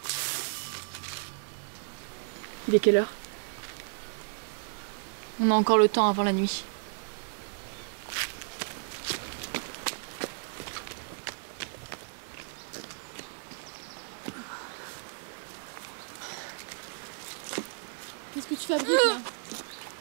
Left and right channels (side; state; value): left; silent; 56 dB below the other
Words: Il est quelle heure? On a encore le temps avant la nuit. Qu'est-ce que tu fabriques là?